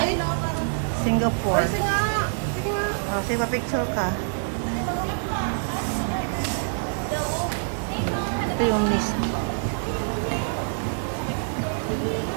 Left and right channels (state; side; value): silent; left; 61 dB below the other